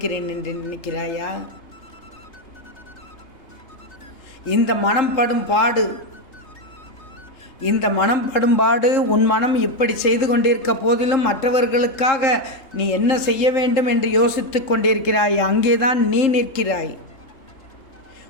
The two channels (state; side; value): late; right; 3.7 ms